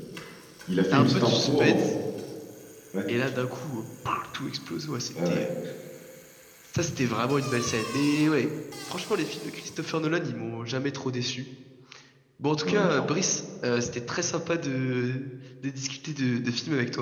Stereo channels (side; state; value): both; identical; correlation 1.00